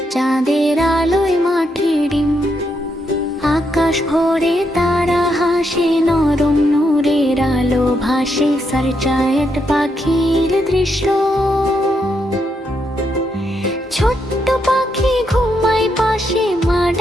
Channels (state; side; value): normal; both; correlation 0.80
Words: চাঁদের আলোয় মাঠে ডিম। আকাশ ভরে তারা হাসে, নরম নূরের আলো ভাসে, সারচায়েট পাখির দৃশ্য। ছোট্ট পাখি ঘুমায় পাশে, মা